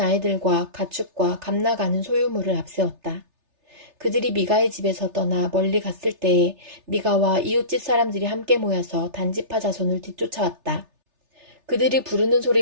가축과 감나가는 소유물을 앞세웠다. 그들이 미가의 집에서 떠나 멀리 갔을 때에 미가와 이웃집 사람들이 함께 모여서 단지파 자손을 뒤쫓아왔다. 그들이 부르는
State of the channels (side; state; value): left; late; 3.3 ms